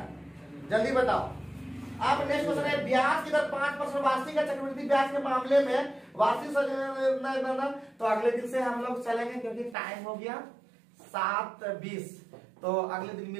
जल्दी बताओ। अब नेक्स्ट क्वेश्चन है ब्याज की दर 5% वार्षिक या चक्रवृद्धि ब्याज के मामले में वार्षिक तो अगले दिन से हम लोग चलेंगे, क्योंकि टाइम हो गया 7:20। तो अगले दिन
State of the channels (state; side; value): drops out; left; at 9.8 s